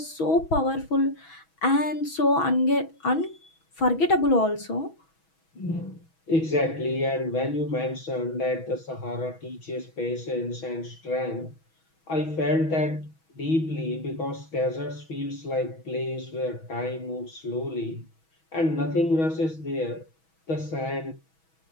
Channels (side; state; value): right; late; 6.2 ms